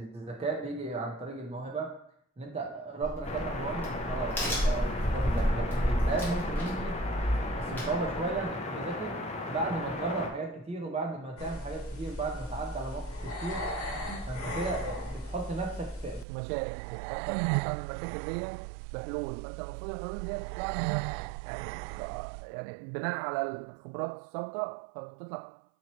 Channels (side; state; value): left; drops out; at 16.2 s